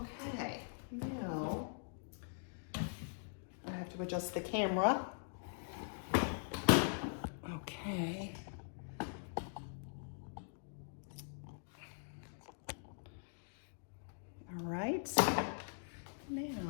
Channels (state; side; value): silent; right; digital silence